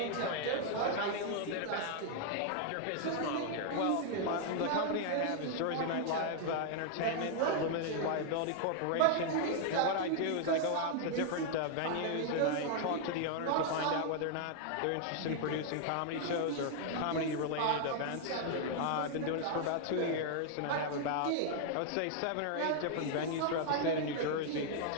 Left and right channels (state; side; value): different; both; correlation 0.00